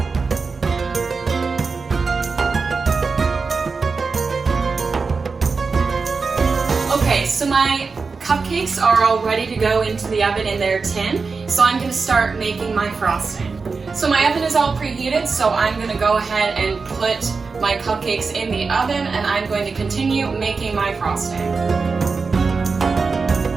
Okay, so my cupcakes are all ready to go into the oven in their tin, so I'm going to start making my frosting. So my oven is all preheated, so I'm going to go ahead and put my cupcakes in the oven, and I'm going to continue making my frosting.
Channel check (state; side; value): quieter; left; 4.6 dB